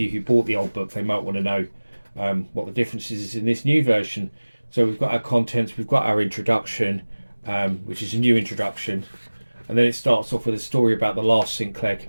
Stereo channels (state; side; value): inverted; both; correlation -1.00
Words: who bought the old book, they might want to know what the differences is in this new version. So we've got our contents, we've got our introduction, which is a new introduction, and then it starts off with a story about the last Sinclair